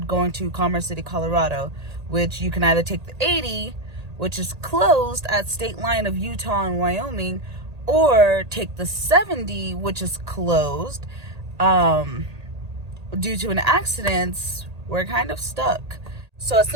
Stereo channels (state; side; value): late; left; 1.8 ms